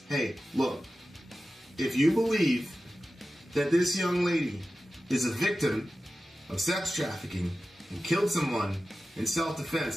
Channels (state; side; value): normal; both; correlation 0.94